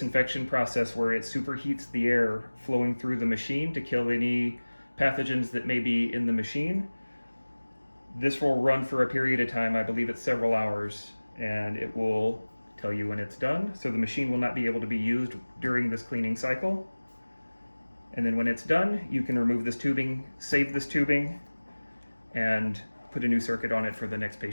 process where it superheats the air flowing through the machine to kill any pathogens that may be in the machine. This will run for a period of time, I believe it's several hours, and it will tell you when it's done. So the machine will not be able to be used during this cleaning cycle. And then when it's done, you can remove this tubing, save this tubing, and put a new circuit on it for the next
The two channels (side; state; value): both; inverted; correlation -1.00